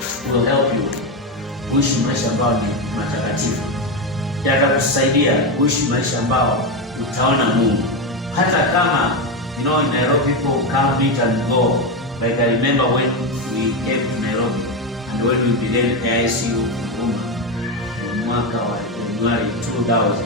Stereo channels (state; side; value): normal; both; correlation 0.12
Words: will help you kuishi maisha ambayo ni matakatifu. Yatakusaidia kuishi maisha ambayo utaona Mungu. Hata kama, in Nairobi people come, meet and go. Like I remember when we came to Nairobi and when we began AICU Huruma in mwaka wa January 2000.